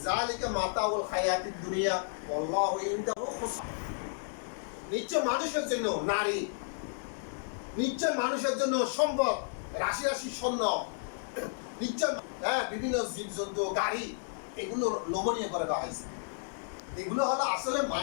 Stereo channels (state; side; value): silent; right; digital silence